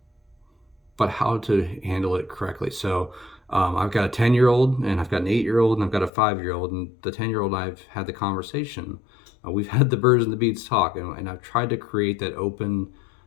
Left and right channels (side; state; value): right; drops out; at 6.1 s